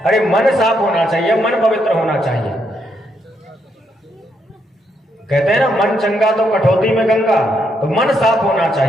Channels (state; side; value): normal; both; correlation 0.77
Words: अरे मन साफ होना चाहिए, मन पवित्र होना चाहिए। कहते हैं ना मन चंगा तो कठौती में गंगा, तो मन साफ होना